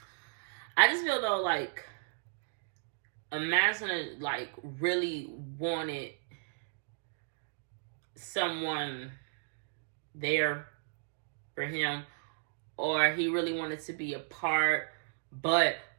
I just feel though, like, imagine, like, really wanted someone there for him, or he really wanted to be apart. But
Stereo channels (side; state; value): left; silent; digital silence